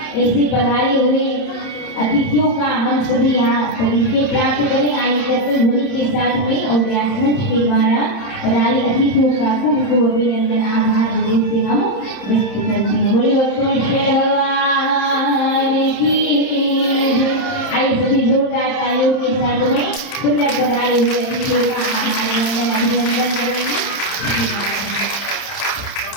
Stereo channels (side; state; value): right; late; 31 ms